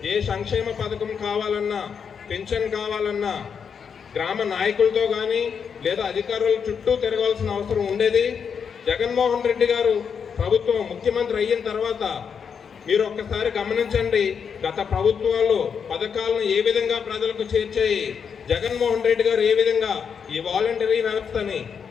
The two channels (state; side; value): quieter; right; 6.7 dB